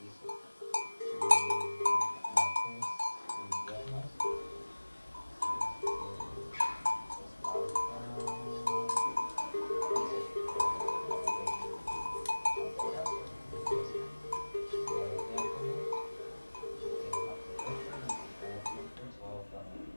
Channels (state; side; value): inverted; both; correlation -1.00